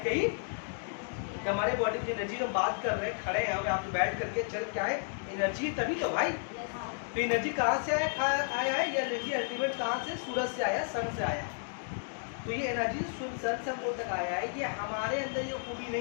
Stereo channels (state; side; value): silent; right; digital silence